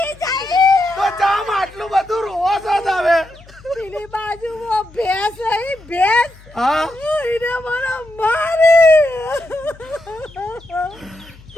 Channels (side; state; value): left; noise; hum, 23 dB below the sound